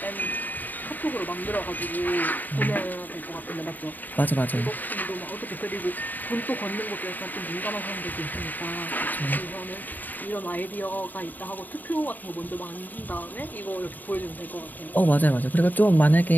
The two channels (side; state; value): right; late; 0.087 ms